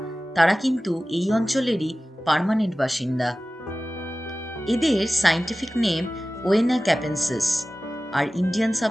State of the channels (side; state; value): both; normal; correlation 0.96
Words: তারা কিন্তু এই অঞ্চলেরই পার্মানেন্ট বাসিন্দা। এদের সায়েন্টিফিক নেম ওয়েনা ক্যাপেন্সিস আর ইন্ডিয়ান